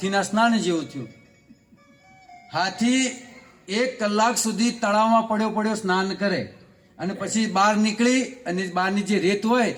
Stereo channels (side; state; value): both; identical; correlation 1.00